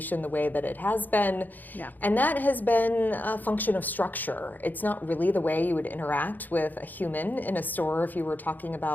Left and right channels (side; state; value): right; late; 0.085 ms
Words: the way that it has been. Yeah. And that has been a function of structure. It's not really the way you would interact with a human in a store if you were talking